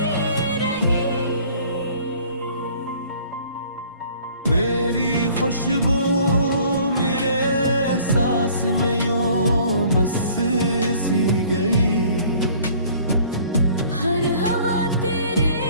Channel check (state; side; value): inverted; both; correlation -0.53